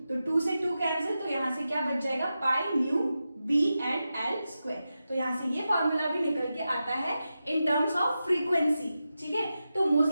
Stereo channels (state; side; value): inverted; both; correlation -0.91